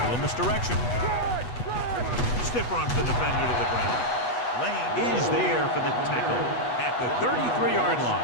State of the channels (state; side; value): late; right; 8.2 ms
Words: Little misdirection. Stiff arms the defender to the ground. Lane is there for the tackle at the 33-yard